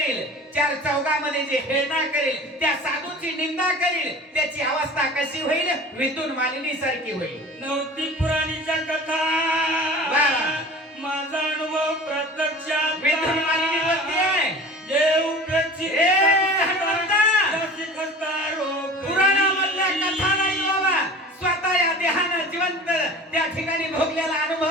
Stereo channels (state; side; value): normal; both; correlation 0.39